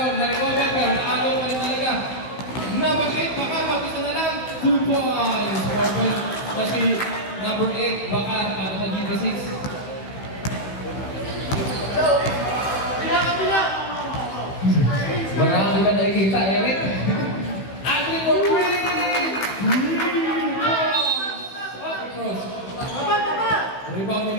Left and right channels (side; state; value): right; late; 16 ms